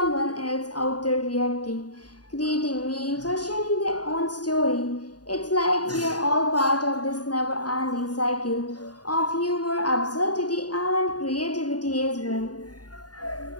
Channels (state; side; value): late; right; 0.69 ms